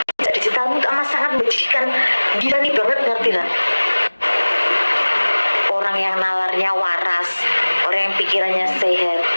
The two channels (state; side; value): inverted; both; correlation -1.00